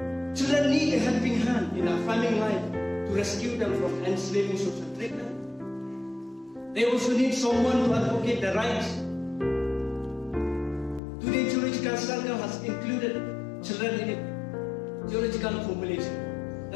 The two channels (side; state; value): right; drops out; at 11.0 s